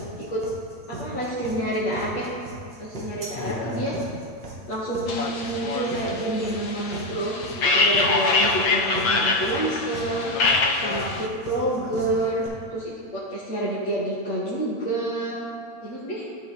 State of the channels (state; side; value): late; right; 8.8 ms